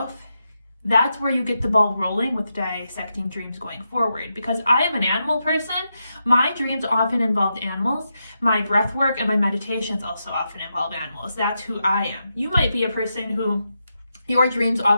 that's where you get the ball rolling with dissecting dreams going forward. Because I am an animal person, my dreams often involved animals. My breath work and my meditations also often involve animals. That's who I am. You might be a person who your dreams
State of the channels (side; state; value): both; inverted; correlation -0.86